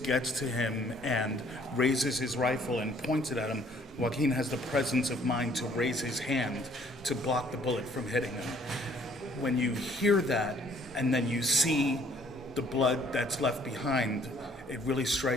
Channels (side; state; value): both; normal; correlation 0.60